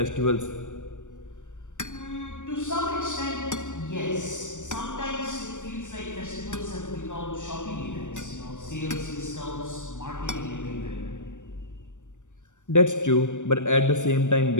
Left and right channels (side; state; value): right; late; 0.85 ms